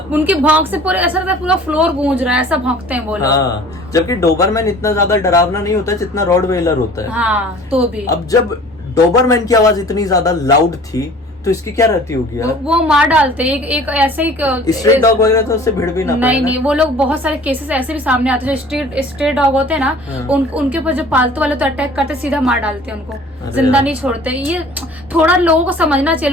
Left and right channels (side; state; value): both; normal; correlation 0.47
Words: उनके भौंक से पूरे ऐसा लगता है पूरा फ्लोर गूंज रहा है, ऐसा भौंकते हैं वो लोग। हाँ, जबकि डोबरमैन इतना ज्यादा डरावना नहीं होता जितना रॉटवेलर होता है। हाँ, तो भी अब जब डोबरमैन की आवाज इतनी ज्यादा लाउड थी तो इसकी क्या रहती होगी यार? वो मार डालते हैं। एक ऐसे ही स्ट्रीट डॉग वगैरह तो उससे भिड़ भी ना पाए ना। नहीं, वो लोग बहुत सारे केसेस ऐसे भी सामने आते हैं, जो स्ट्रीट डॉग होते हैं ना, हाँ। उनके ऊपर जो पालतू वाले तो अटैक करते, सीधा मार डालते हैं उनको, अरे जिंदा यार। नहीं छोड़ते। ये थोड़ा लोगों को समझना चाहिए,